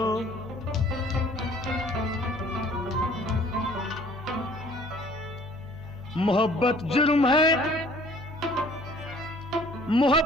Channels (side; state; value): both; normal; correlation 0.55